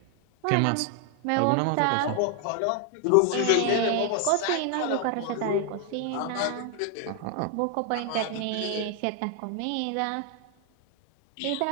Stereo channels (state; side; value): different; both; correlation 0.00